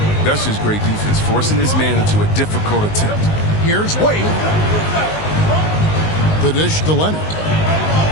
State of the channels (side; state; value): right; late; 19 ms